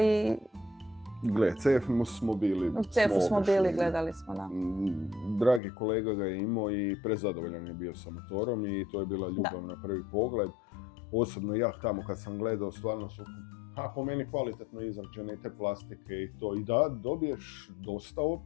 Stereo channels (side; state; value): right; drops out; at 5.6 s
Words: Gle, CF smo bili. U CF-u smo bili, gledali smo, da. Dragi kolega ga je imao i prezadovoljan je bio sa motorom i to je bila ljubav na prvi pogled. Osobno ja tamo kad sam gledao, stvarno su po meni kvalitetno izrađene te plastike i to. I da, dobiješ dosta